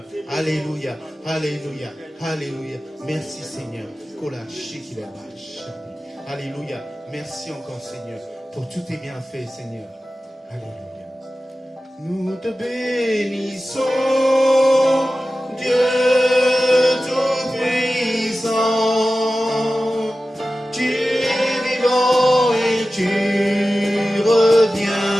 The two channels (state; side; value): normal; both; correlation 0.95